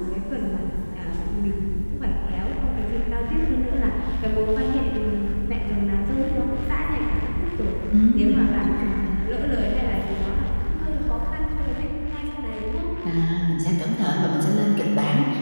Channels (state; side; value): inverted; both; correlation -1.00